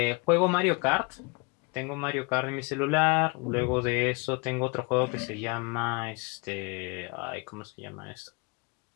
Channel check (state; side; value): quieter; right; 29.4 dB